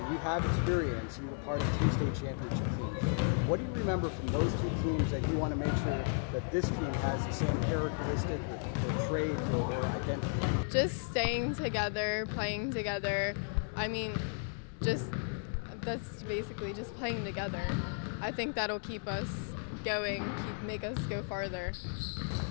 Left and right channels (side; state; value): right; silent; 55 dB below the other